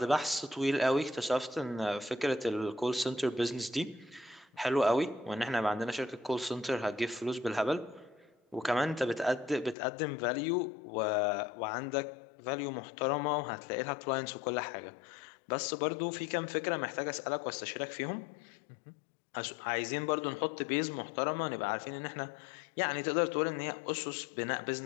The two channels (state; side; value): drops out; right; at 9.8 s